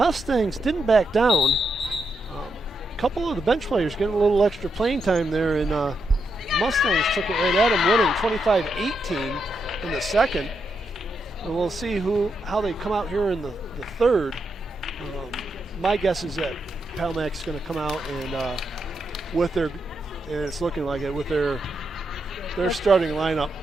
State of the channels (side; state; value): both; normal; correlation 0.82